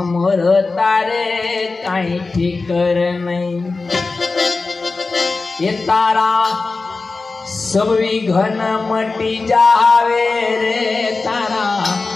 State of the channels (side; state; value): right; quieter; 3.8 dB